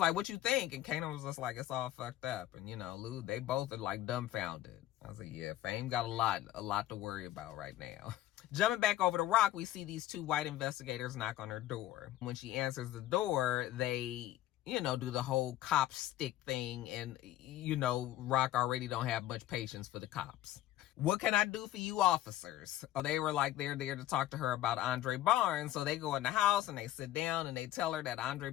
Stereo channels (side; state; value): right; quieter; 13.8 dB